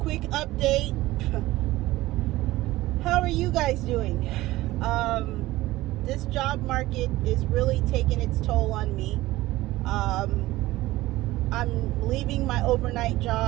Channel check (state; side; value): quieter; left; 17.6 dB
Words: update. How are you guys doing? This job market is really taking its toll on me. I'm leaving my overnight